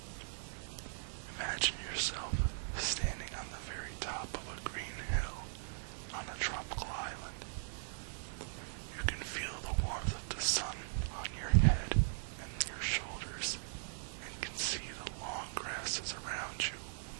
Imagine yourself standing on the very top of a green hill on a tropical island. You can feel the warmth of the sun on your head and your shoulders, and can see the long grasses around you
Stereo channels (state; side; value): silent; left; digital silence